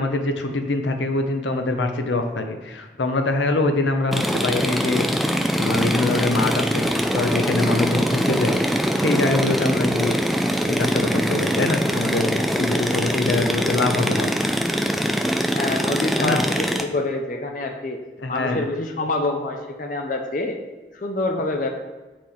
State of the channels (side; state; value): both; normal; correlation 0.65